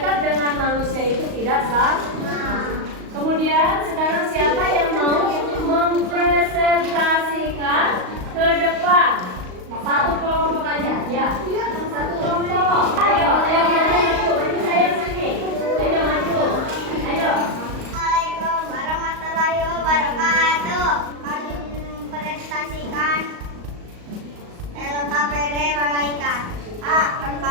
dengan manusia itu tidak sama. Kemudian sekarang siapa yang mau mempresentasikan ke depan? Satu kelompok aja, ya. Satu kelompok. Ayo maju saya sini. Ayo maju. Ayo. Assalamualaikum warahmatullahi wabarakatuh. Kami mempresentasikan LKPD malaikat. A.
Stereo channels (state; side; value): late; left; 38 ms